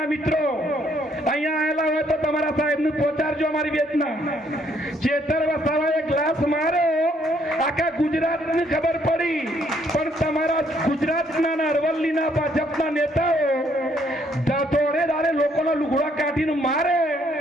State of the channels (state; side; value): normal; both; correlation 0.68